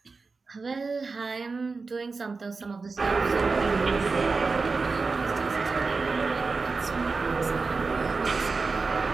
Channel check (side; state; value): left; quieter; 4.3 dB